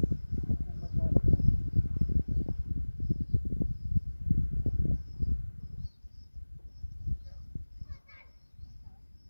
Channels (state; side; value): inverted; both; correlation -1.00